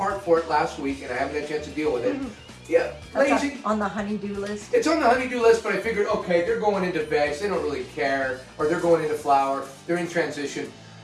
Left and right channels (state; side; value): identical; both; correlation 1.00